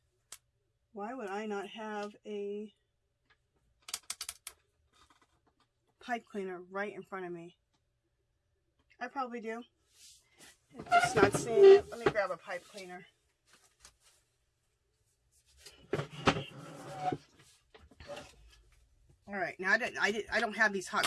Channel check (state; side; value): identical; both; correlation 1.00